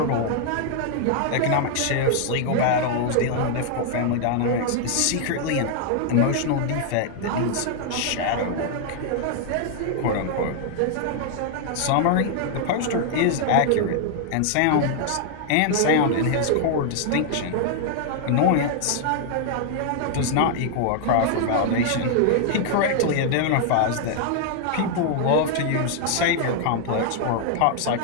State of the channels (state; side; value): different; both; correlation 0.00